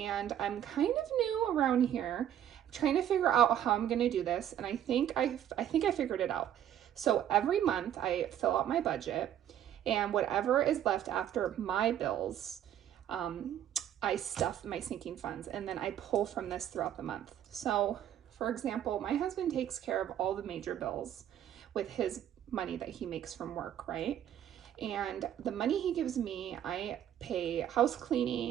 I'm kind of new around here. I'm trying to figure out how I'm going to do this. And I think I figured it out. So every month I fill out my budget, and whatever is left after my bills, I stuff my sinking funds, and then I pull from this throughout the month. So for example, my husband takes care of all the major bills with his money that he makes from work, right? And the money he gives me, I pay house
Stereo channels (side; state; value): left; quieter; 10.6 dB